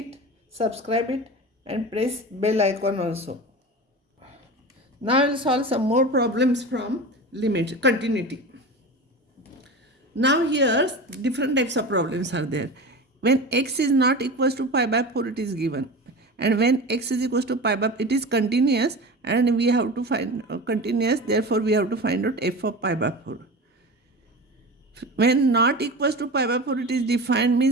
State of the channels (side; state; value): both; normal; correlation 0.30